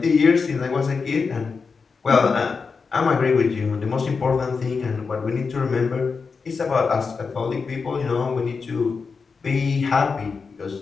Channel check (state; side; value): quieter; right; 5.0 dB